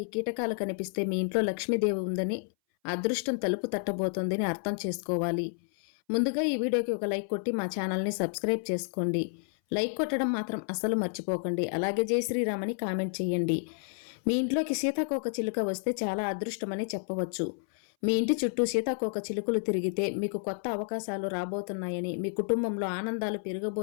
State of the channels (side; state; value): right; silent; 58 dB below the other